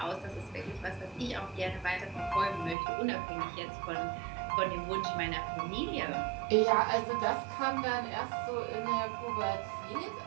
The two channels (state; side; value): drops out; left; at 2.8 s